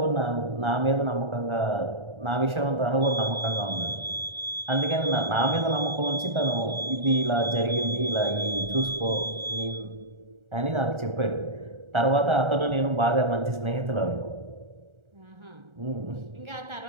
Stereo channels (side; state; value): left; late; 1.4 ms